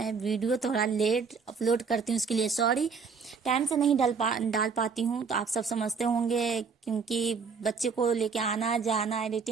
वीडियो थोड़ा लेट अपलोड करती हूँ, उसके लिए सॉरी। टाइम से नहीं डाल पाती हूँ, तो आप सब समझते होंगे, क्योंकि बच्चे को लेके आना जाना,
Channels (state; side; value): quieter; left; 5.4 dB